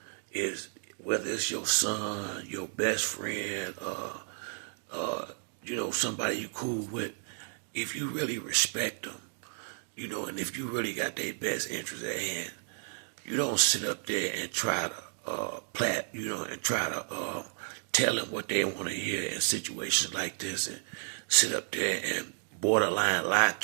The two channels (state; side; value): silent; left; digital silence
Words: is, whether it's your son, your best friend, somebody you cool with, if you really respect them, and if you really got their best interest at hand, you don't sit up there and try to and try to tell them what they want to hear in situations like this and sit up there and borderline lie